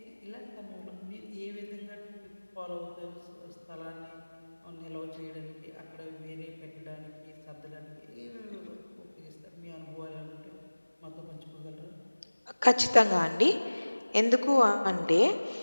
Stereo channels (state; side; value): inverted; both; correlation -1.00